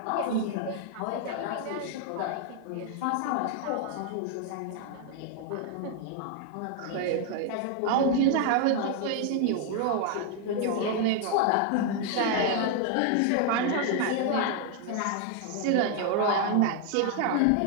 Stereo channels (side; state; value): both; different; correlation 0.00